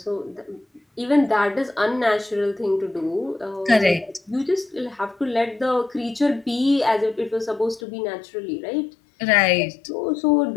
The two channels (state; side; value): drops out; right; at 7.8 s